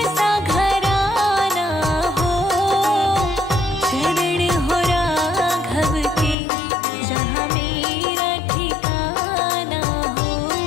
सा घराना हो,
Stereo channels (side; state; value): right; drops out; at 6.4 s